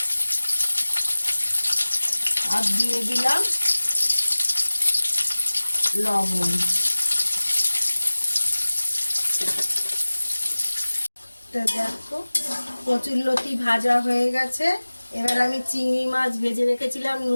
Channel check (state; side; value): inverted; both; correlation -1.00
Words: আর দিয়ে দিলাম লবণ। তো দেখো কচুরলতি ভাজা হয়ে গেছে। এবার আমি চিংড়ি মাছ ভেজে রেখেছিলাম